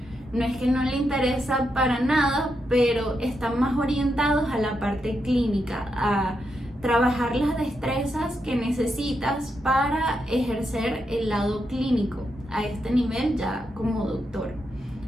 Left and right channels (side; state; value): both; normal; correlation 0.83